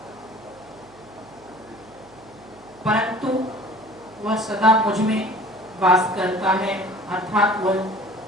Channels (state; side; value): noise; right; hum, 25 dB below the sound